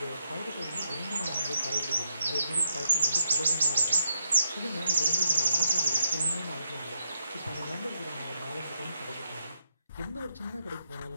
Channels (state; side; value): inverted; both; correlation -0.80